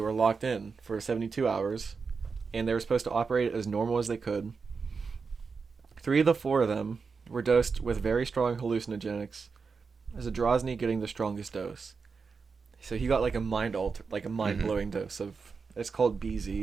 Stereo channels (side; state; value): left; quieter; 5.1 dB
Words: locked in for 72 hours, and they were supposed to operate as normal as they could. 3 of the 4 of them were dosed with very strong hallucinogenics, Zadrozny getting the strongest dose. So he got like a mind-blowing dose of, it's called